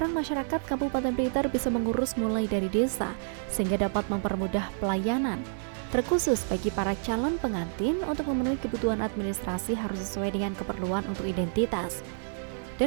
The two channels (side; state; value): left; silent; digital silence